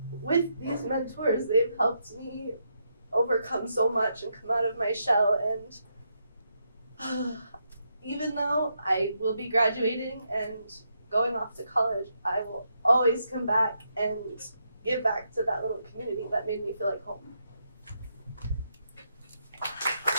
with these mentors, they've helped me overcome so much and come out of my shell. And even though I will be graduating and going off to college, I will always come back and give back to that little community that made me feel like home.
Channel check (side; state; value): both; inverted; correlation -0.80